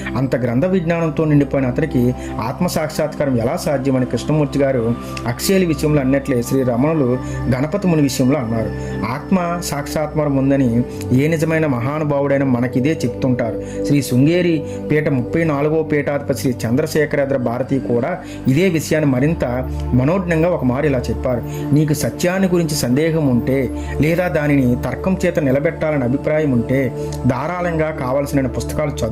అంత గ్రంథ విజ్ఞానంతో నిండిపోయిన అతనికి ఆత్మ సాక్షాత్కారం ఎలా సాధ్యమని కృష్ణమూర్తి గారు హక్స్లీ విషయంలో అన్నట్లే శ్రీ రమణులు గణపతి ముని విషయంలో అన్నారు. ఆత్మ సాక్షాత్కారం ఉందని ఏ నిజమైన మహానుభావుడైన మనకిదే చెప్తుంటారు. శ్రీ శృంగేరి పీఠ 34వ పీఠాధిపతి శ్రీ చంద్రశేఖరేంద్ర భారతి కూడా ఇదే విషయాన్ని మరింత మనోజ్ఞంగా ఒక మారు ఇలా చెప్పారు: నీకు సత్యాన్ని గురించి సందేహం ఉంటే, లేదా దానిని తర్కం చేత నిలబెట్టాలని అభిప్రాయం ఉంటే ధారాళంగా కావలసిన పుస్తకాలు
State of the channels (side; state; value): both; identical; correlation 1.00